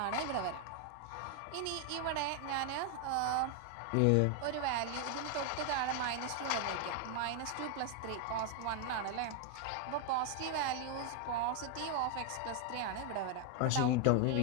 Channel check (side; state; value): both; different; correlation 0.00